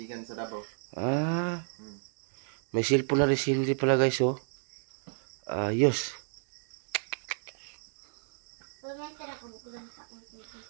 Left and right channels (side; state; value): left; silent; digital silence